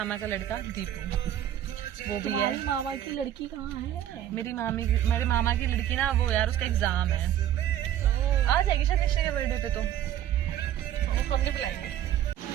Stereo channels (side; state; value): left; quieter; 11.4 dB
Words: का लड़का दीपू, वो भी है। मामा की लड़की कहाँ है? मेरे मामा की लड़की ना, वो यार उसका एग्जाम है, आ जाएगी शायद निश्चय के बर्थडे पे, तो फोन नहीं बुलाएंगे।